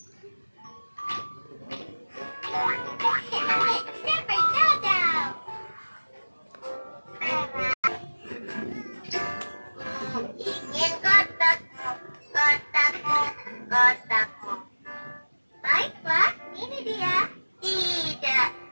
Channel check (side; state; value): both; inverted; correlation -1.00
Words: Ingin kotakmu, kotakmu, kotakmu. Baiklah, ini dia. Tidak,